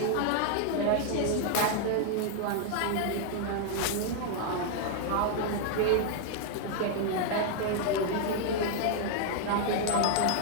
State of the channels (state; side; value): different; both; correlation 0.00